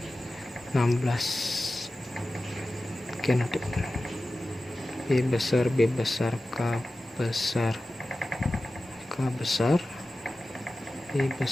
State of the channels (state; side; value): normal; both; correlation 0.94